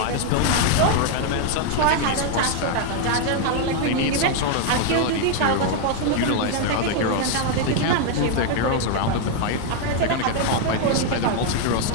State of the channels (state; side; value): different; both; correlation 0.00